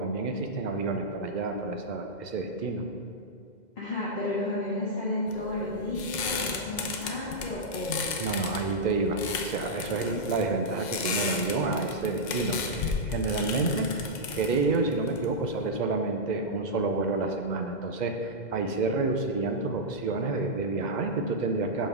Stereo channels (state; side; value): late; right; 2.0 ms